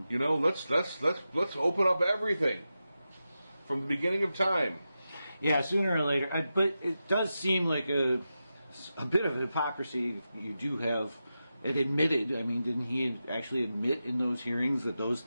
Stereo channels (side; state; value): both; inverted; correlation -0.91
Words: open up everything from the beginning of time. Yeah, sooner or later. But it does seem like a bit of an hypocrisy. You do have it admitted. I mean, didn't he actually admit in those hearings that those